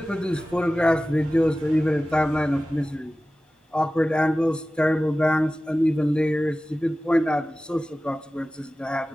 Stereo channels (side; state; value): both; normal; correlation 0.96